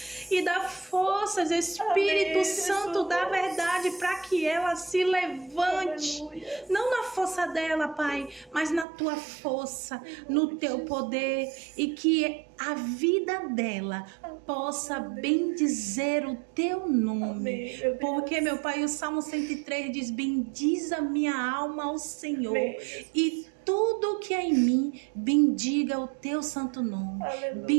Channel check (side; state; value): left; drops out; at 8.8 s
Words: e dá forças, Espírito Santo da verdade, para que ela se levante. Não na força dela, Pai, mas na tua força, no teu poder, e que a vida dela possa bendizer o teu nome. Porque, meu Pai, o Salmo 103 diz: bendiz a minha alma ao Senhor, e tudo que é em mim, bendiga o teu santo nome.